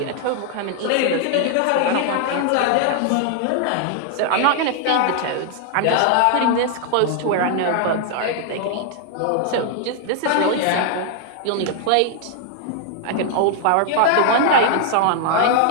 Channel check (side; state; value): both; different; correlation 0.00